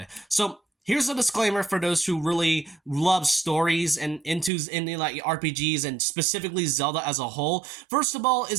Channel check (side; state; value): left; drops out; at 4.5 s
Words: So here's a disclaimer for those who really love stories and into like RPGs and specifically Zelda as a whole. First of all,